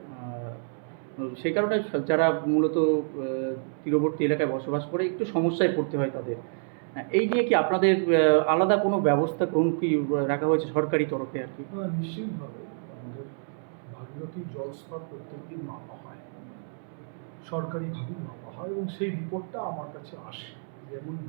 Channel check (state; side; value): silent; left; 59 dB below the other